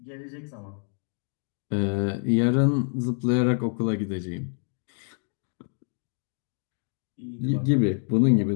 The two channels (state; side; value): silent; right; 56 dB below the other